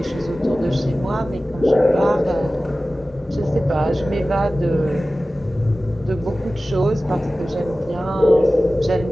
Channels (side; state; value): both; normal; correlation 0.96